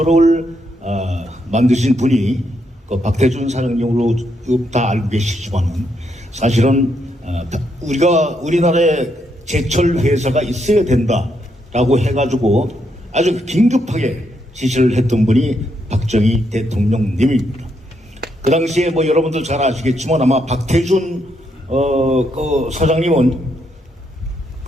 만드신 분이 그 박태준 사장님으로 다 알고 계시지만은 사실은 우리나라에 제철 회사가 있어야 된다라고 해가지고 아주 긴급하게 지시를 했던 분이 박정희 대통령님입니다. 그 당시에 뭐 여러분들 잘 아시겠지만 아마 박태준 그 사장님은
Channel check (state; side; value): normal; both; correlation 0.78